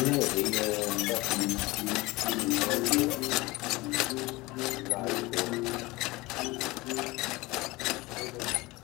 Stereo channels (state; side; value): quieter; right; 21.6 dB